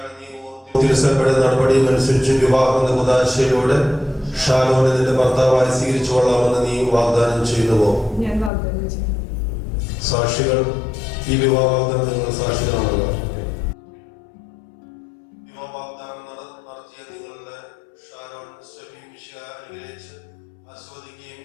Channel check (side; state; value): right; drops out; at 8.5 s